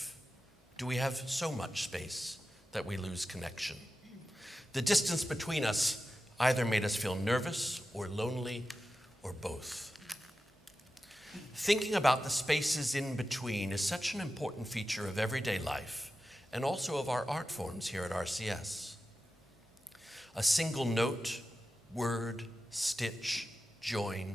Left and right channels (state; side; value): normal; both; correlation 0.92